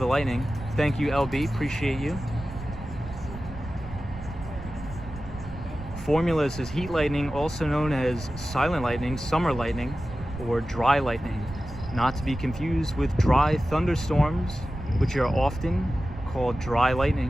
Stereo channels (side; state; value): right; noise; rumble, 12 dB below the sound